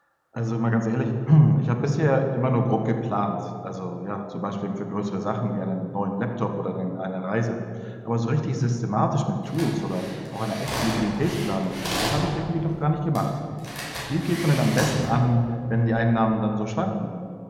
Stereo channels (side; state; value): both; identical; correlation 1.00